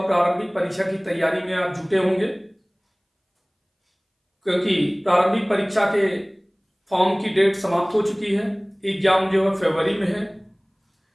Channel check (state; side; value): identical; both; correlation 1.00